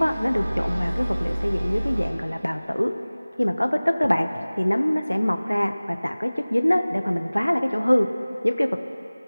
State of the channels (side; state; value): both; inverted; correlation -0.99